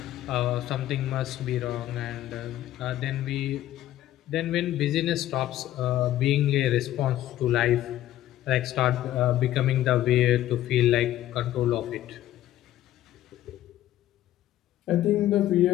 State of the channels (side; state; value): right; quieter; 13.4 dB